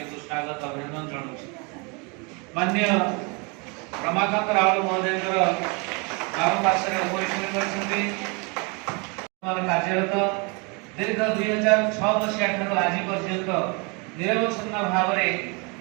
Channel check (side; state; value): left; quieter; 31.5 dB